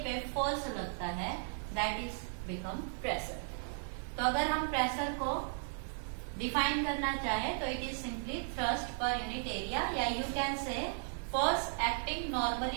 पे फोर्स लगता है दैट इज बिकम प्रेशर। तो अगर हम प्रेशर को डिफाइन करना चाहे तो it is simply thrust per unit area, या you can say force acting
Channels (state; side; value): silent; left; 54 dB below the other